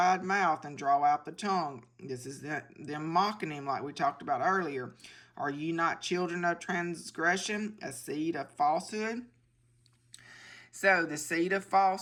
mouth and draw out the tongue?" This is them mocking him like we talked about earlier. "Are ye not children of transgression, a seed of falsehood?" So the seed of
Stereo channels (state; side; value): identical; both; correlation 1.00